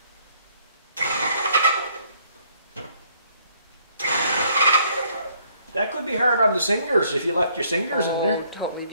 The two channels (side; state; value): both; inverted; correlation -0.65